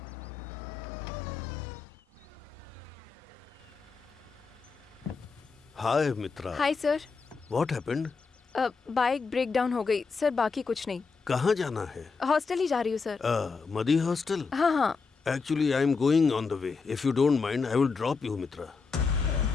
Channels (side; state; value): right; quieter; 4.8 dB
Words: Hi Mitra. Hi sir. What happened? Bike break down हो गई सर, बाकी कुछ नहीं। कहाँ जाना है? हॉस्टल ही जा रही हूँ सर। मदी हॉस्टल? हाँ हाँ। Actually, I am going on the way. If you don't mind, I will drop you, Mitra.